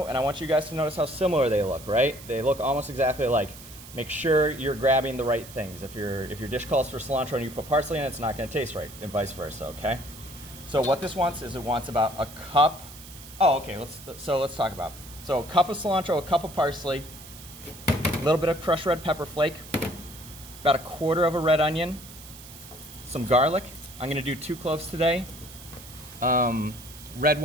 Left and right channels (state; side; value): noise; right; hiss, 17 dB below the sound